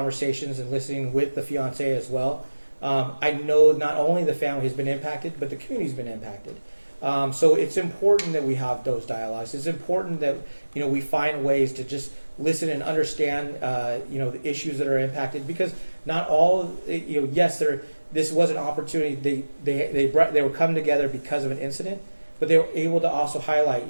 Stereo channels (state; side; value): inverted; both; correlation -1.00